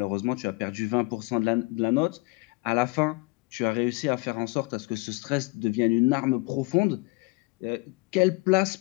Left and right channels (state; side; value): quieter; right; 26.2 dB